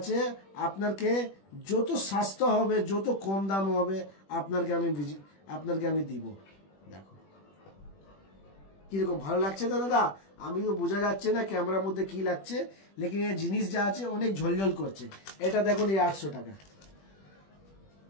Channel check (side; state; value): right; late; 21 ms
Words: আপনাকে যত সস্তা হবে যত কম দাম হবে আপনাকে আমি দিব। দেখো কিরকম ভালো লাগছে তো দাদা, আমিও বোঝা যাচ্ছে না ক্যামেরার মধ্যে কি লাগছে, লেকিন এই জিনিস যা আছে অনেক ঝলঝল করছে। এটা দেখুন এই 800 টাকা,